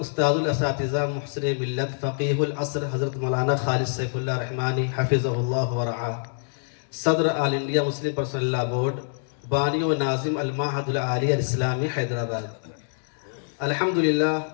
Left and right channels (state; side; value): silent; right; digital silence